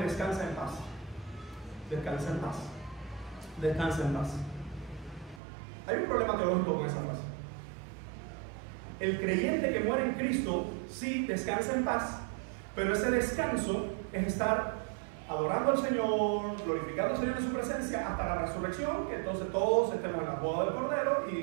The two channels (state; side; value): drops out; left; at 5.4 s